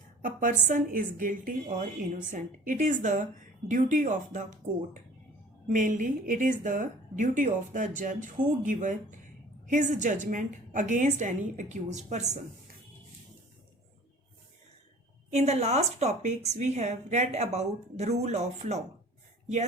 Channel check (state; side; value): normal; both; correlation 0.47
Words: a person is guilty or innocent. It is the duty of the court. Mainly, it is the duty of the judge who gives his judgment against any accused person. In the last topics, we have read about the rule of law.